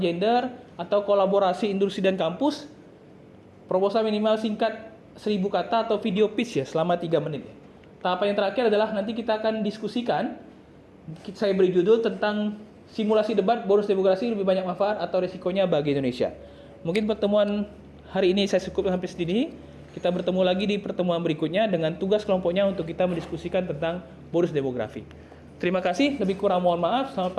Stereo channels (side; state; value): both; identical; correlation 1.00